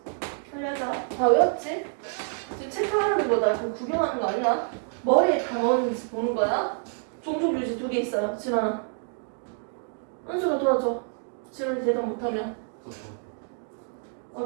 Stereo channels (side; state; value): left; silent; 57 dB below the other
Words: 살려자. 다 외웠지? 지금 체크하는 거다. 그럼 구경하는 거 아니야? 머리에 다 넣었는지 보는 거야. 종족 유지 2개 있어요. 진원아. 은수가 도와줘. 진원이 대답 못하면.